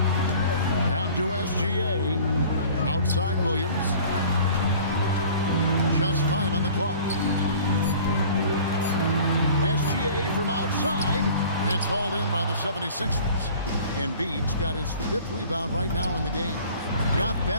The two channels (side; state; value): both; inverted; correlation -0.46